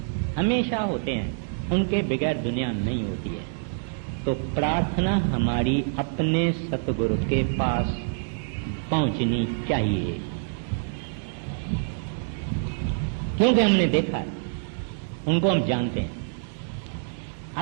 हमेशा होते हैं, उनके बगैर दुनिया नहीं होती है। तो प्रार्थना हमारी अपने सतगुरु के पास पहुंचनी चाहिए, क्योंकि हमने देखा है, उनको हम जानते हैं।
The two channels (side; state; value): left; silent; digital silence